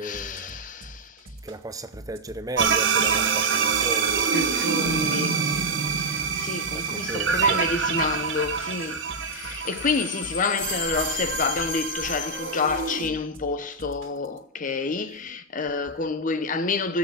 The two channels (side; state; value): both; normal; correlation -0.01